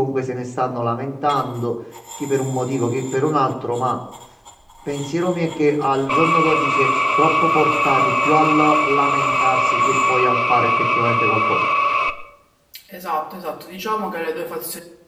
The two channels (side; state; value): both; identical; correlation 1.00